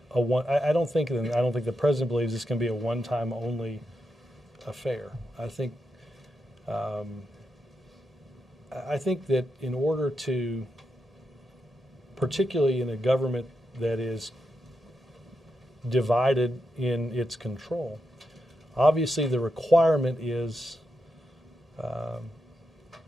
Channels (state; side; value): normal; both; correlation 0.85